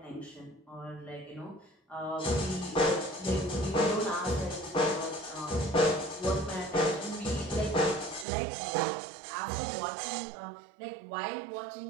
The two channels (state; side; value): drops out; left; at 8.2 s